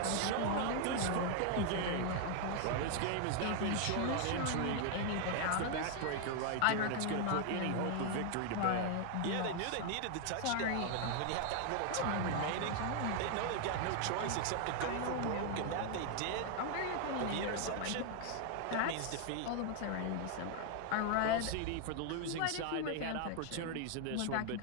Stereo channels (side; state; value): both; different; correlation 0.00